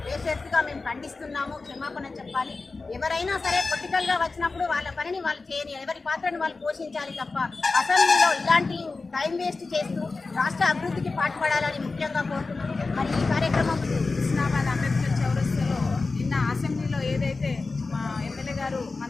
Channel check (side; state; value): right; quieter; 3.8 dB